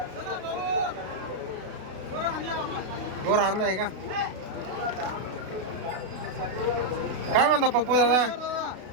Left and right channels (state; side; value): late; left; 32 ms